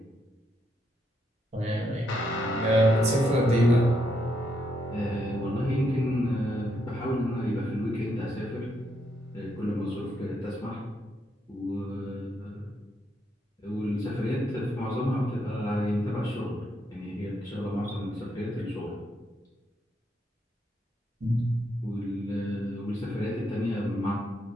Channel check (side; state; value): both; normal; correlation 0.78